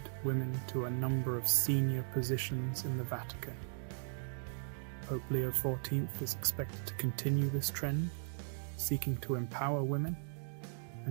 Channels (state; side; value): silent; left; digital silence